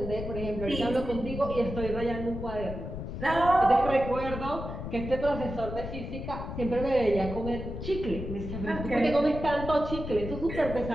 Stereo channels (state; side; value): noise; left; rumble, 7 dB below the sound